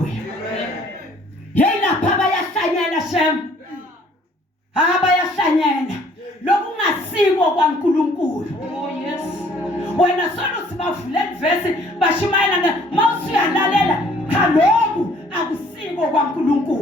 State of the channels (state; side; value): normal; both; correlation 0.59